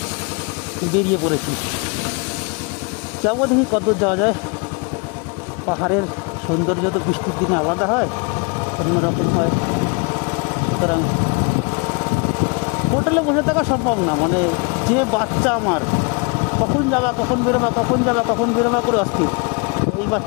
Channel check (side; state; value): right; quieter; 32.6 dB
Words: বেরিয়ে পড়েছি। যাবো, দেখি কতদূর যাওয়া যায়। পাহাড়ের সৌন্দর্য তো বৃষ্টির দিনে আলাদা হয়, অন্যরকম হয়। সুতরাং হোটেলে বসে থাকা সম্ভব না, মানে যে বাচ্চা আমার, কখন যাবা কখন বেরোবা করে অস্থির। এই